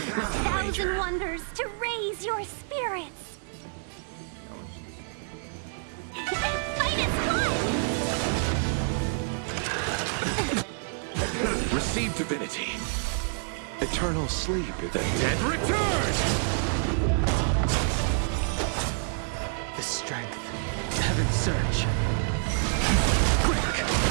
and wonders to raise your spirits. Fight is fun! Receive divinity. Eternal sleep is The dead return! The strength. Heaven's surge. Quick!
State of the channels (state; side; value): silent; left; digital silence